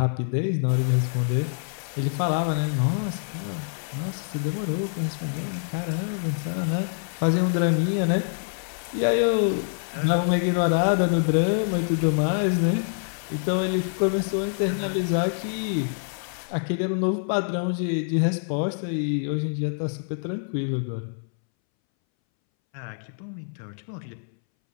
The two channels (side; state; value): right; silent; 61 dB below the other